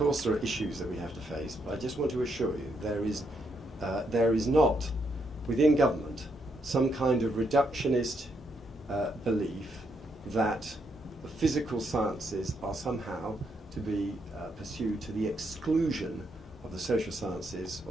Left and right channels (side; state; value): both; normal; correlation 0.77